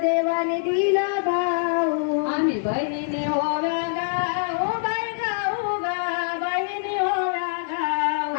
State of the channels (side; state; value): right; silent; 62 dB below the other